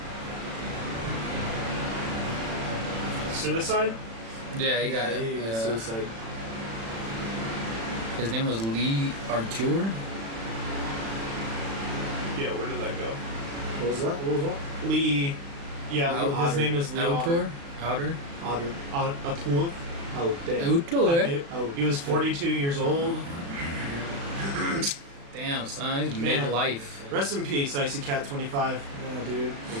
Suicide? Yeah, he got He it. suicide. His name was Lee Artur. Yeah, where did that go? What was that? What was that? Lee. Yeah, Otter. his name is Lee Artur? Outer? Otter. Atul. Oh, damn. Artur? Oh, He was 42 years old. Damn, son, he's Man. midlife. Rest in peace, Icy Cat 25. Yeah, dude.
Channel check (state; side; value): late; left; 35 ms